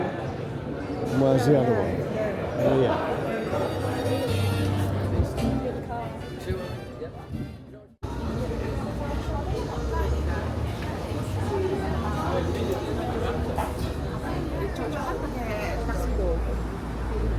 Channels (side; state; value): both; identical; correlation 1.00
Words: where's the other one? Oh yeah.